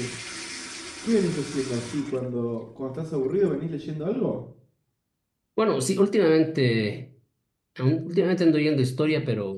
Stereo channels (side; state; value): both; identical; correlation 1.00